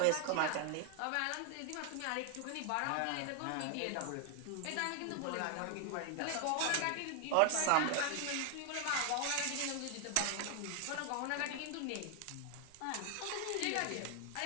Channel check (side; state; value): both; different; correlation 0.00